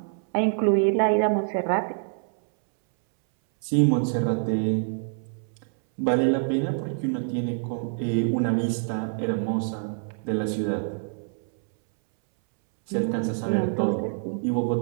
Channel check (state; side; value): silent; left; 61 dB below the other